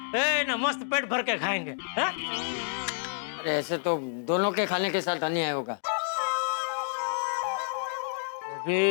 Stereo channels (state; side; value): silent; right; digital silence